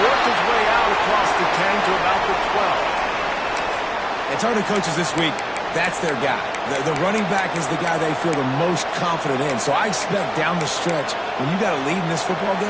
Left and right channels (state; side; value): identical; both; correlation 1.00